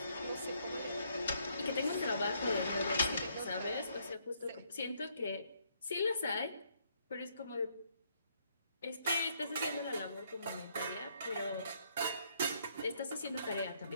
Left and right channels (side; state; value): both; inverted; correlation -0.71